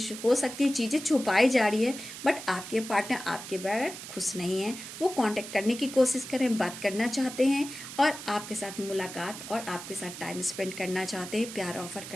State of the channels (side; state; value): right; noise; hiss, 11 dB below the sound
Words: हो सकती है, चीज़ें छुपाई जा रही है, बट आपके पार्टनर आपके बगैर खुश नहीं है। वो कांटेक्ट करने की कोशिश करें, बात करना चाहते हैं और आपके साथ मुलाकात और आपके साथ टाइम स्पेंड करना चाहते हैं, प्यार ऑफर